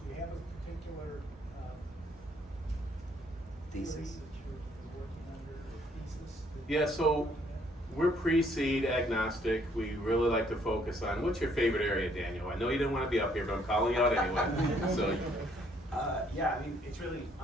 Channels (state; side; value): normal; both; correlation 0.66